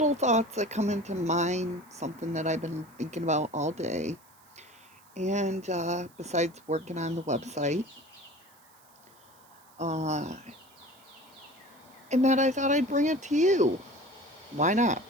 thoughts that come into mind, something that I've been thinking about all day. And besides working on the website, uh, and that I thought I'd bring it to you. Why not,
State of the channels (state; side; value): noise; right; hiss, 28 dB below the sound